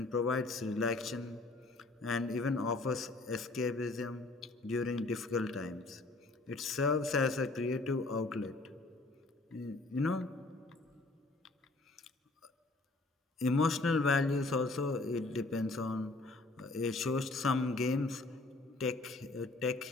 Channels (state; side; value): quieter; right; 3.2 dB